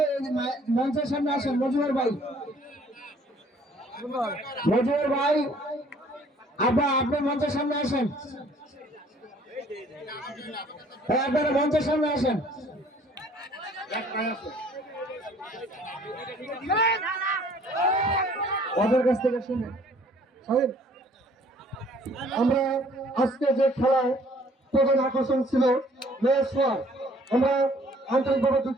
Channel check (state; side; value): normal; both; correlation 0.57